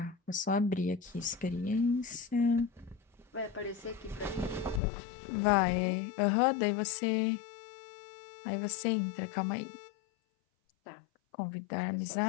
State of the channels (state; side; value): drops out; right; at 4.8 s